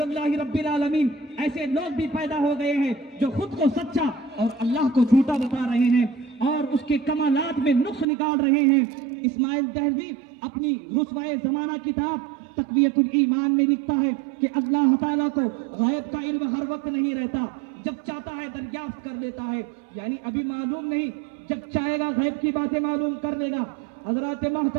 रब्बिल आलमीन। ऐसे लोग भी पैदा हो गए हैं जो खुद को सच्चा और अल्लाह को झूठा बता रहे हैं और उसके कमालात में नुक्स निकाल रहे हैं। इस्माइल दहलवी अपनी रुस्वाए जमाना किताब तक़वियतुल ईमान में लिखता है कि अल्लाह ताला को गैब का इल्म हर वक्त नहीं रहता, जब चाहता है दरियाफ्त कर लेता है, यानी अभी मालूम नहीं, जब चाहेगा गैब की बातें मालूम कर लेगा। हजरात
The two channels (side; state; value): left; drops out; at 8.1 s